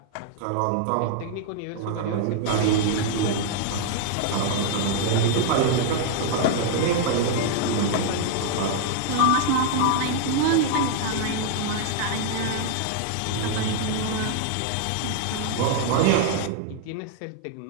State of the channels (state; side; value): different; both; correlation 0.00